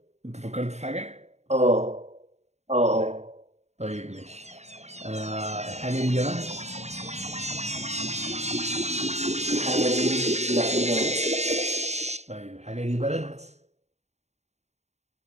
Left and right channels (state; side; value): late; left; 0.32 ms